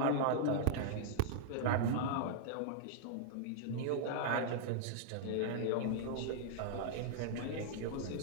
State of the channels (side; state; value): both; different; correlation -0.01